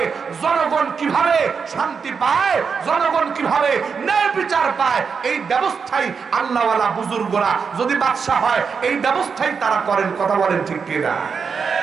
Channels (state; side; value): quieter; left; 5.8 dB